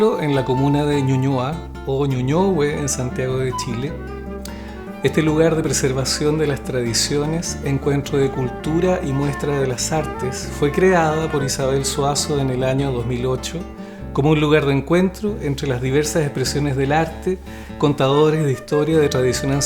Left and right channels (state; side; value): identical; both; correlation 1.00